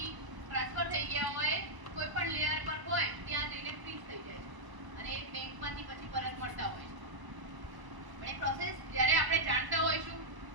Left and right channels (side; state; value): left; late; 1.0 ms